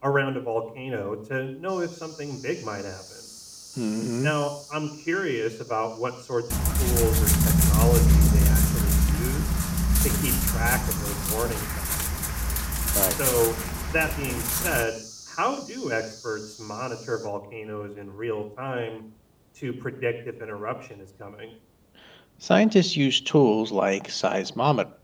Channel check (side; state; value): both; identical; correlation 1.00